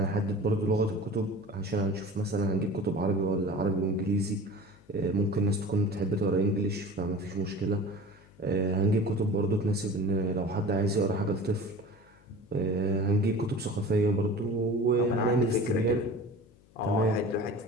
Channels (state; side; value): noise; left; hum, 28 dB below the sound